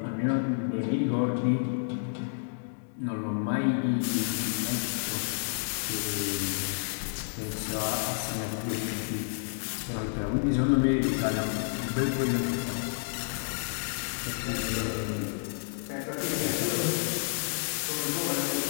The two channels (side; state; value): right; silent; digital silence